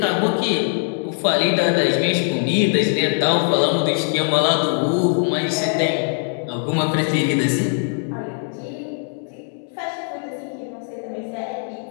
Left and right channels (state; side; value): silent; right; 58 dB below the other